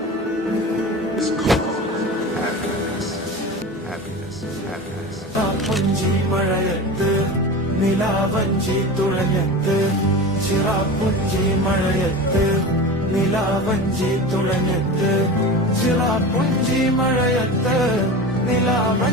is called happiness. Happiness, happiness. പുഞ്ചി മഴയത്ത് നിലാവഞ്ചി തുഴഞ്ഞത്ത് ചിറാപ്പുഞ്ചി മഴയത്ത് നിലാവഞ്ചി തുഴഞ്ഞത്ത് ചിറാപ്പുഞ്ചി മഴയത്ത്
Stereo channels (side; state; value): both; normal; correlation 0.30